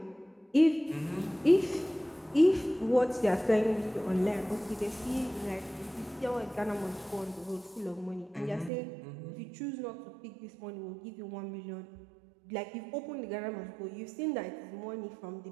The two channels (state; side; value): drops out; left; at 8.7 s